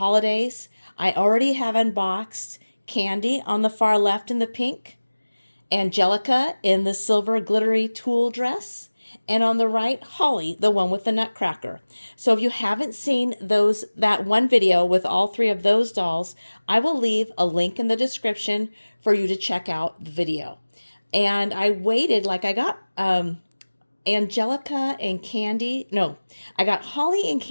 I already have unboxed Candy on the far left in the pink, Angelica in the silver glittery tulle dress, and on the right, Holly, the one with the nutcracker. So if you haven't seen that one video with all three of those dolls, I will leave a link in the description for you to check out the video. And I waited, like I got Angelica and Candy. No, I got Holly and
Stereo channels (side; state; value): both; inverted; correlation -1.00